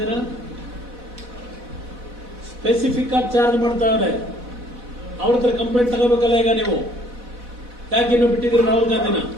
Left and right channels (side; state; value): left; late; 4.1 ms